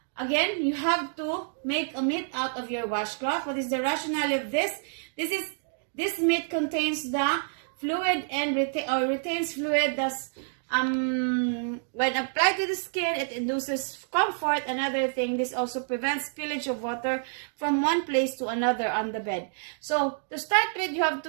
again, you have to make a mitt out of your washcloth. What is the rationale of this? This mitt contains the fluid and retains fluid. Thus, when applied to the skin, it induces comfort. Another thing, this also prevents spillage of water from one place to another on the bed. So to start with, you have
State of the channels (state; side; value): silent; left; digital silence